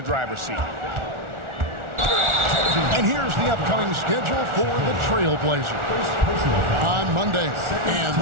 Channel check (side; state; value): left; late; 1.4 ms